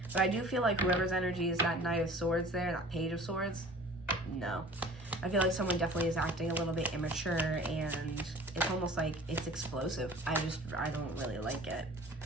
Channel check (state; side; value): normal; both; correlation 0.45